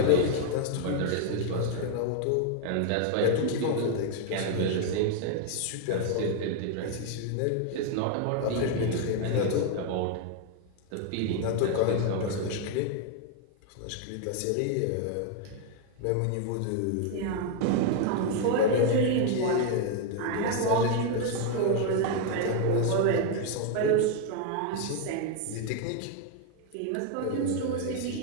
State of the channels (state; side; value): different; both; correlation 0.00